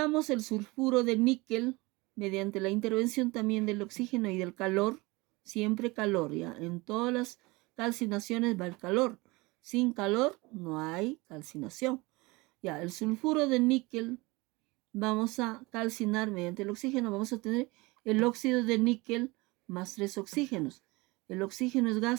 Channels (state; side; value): quieter; left; 23.7 dB